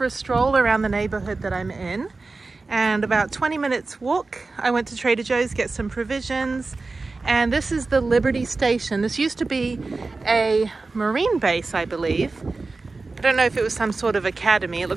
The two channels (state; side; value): quieter; left; 3.7 dB